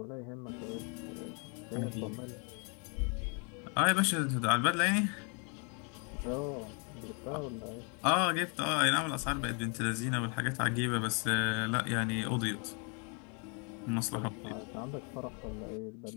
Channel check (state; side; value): quieter; right; 36.8 dB